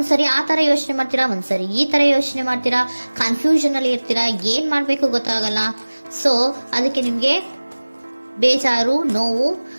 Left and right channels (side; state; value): both; inverted; correlation -1.00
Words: ಆ ತರ ಯೋಚನೆ ಮಾಡ್ತೀರಾ, ಒಂದ್ಸರಿ ಈ ತರ ಯೋಚನೆ ಮಾಡ್ತೀರಾ, ಕನ್ಫ್ಯೂಷನ್ ಅಲ್ಲಿ ಇರ್ತೀರಾ, ಏನ್ ಮಾಡ್ಬೇಕು ಗೊತ್ತಾಗಲ್ಲ. ಸೊ ಅದಕ್ಕೆ ನಿಮ್ಗೆ ಬೇಜಾರು, ನೋವು